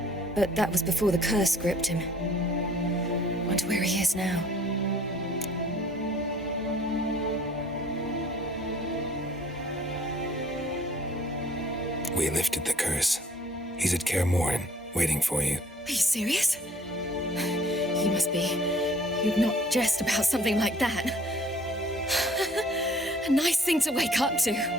But that was before the curse gripped him. Wonder where he is now. We lifted the curse. He's at Kaer Morhen, waiting for you. Are you serious? You must be. You'd not jest about something like that. A nice thing to wake up to.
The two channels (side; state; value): both; normal; correlation 0.55